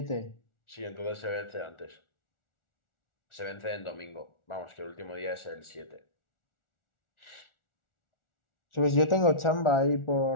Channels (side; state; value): right; late; 1.4 ms